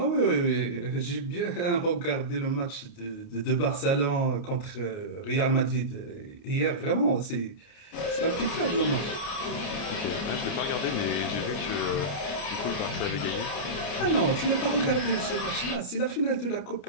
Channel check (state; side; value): late; right; 29 ms